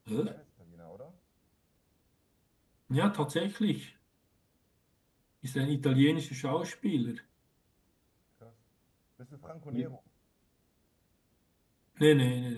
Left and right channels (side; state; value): both; identical; correlation 1.00